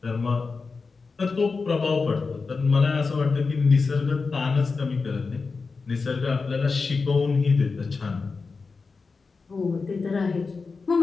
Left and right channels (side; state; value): right; quieter; 4.5 dB